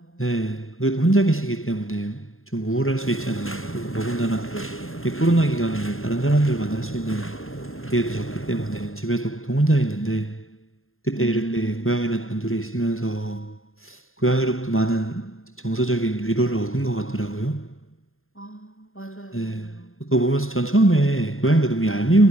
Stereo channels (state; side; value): late; right; 0.61 ms